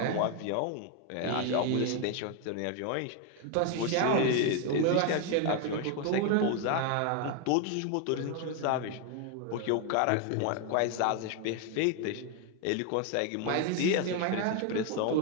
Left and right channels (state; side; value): different; both; correlation 0.01